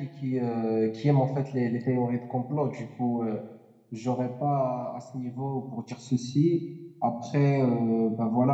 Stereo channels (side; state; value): both; identical; correlation 1.00